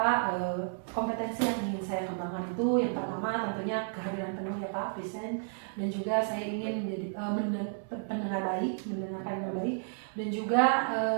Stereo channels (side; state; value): left; silent; 56 dB below the other